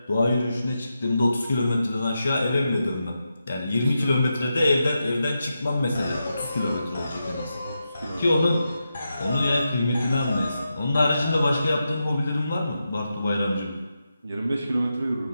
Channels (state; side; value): inverted; both; correlation -0.88